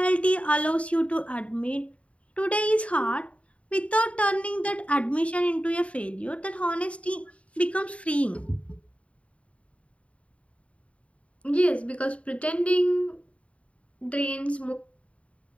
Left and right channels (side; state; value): right; late; 0.064 ms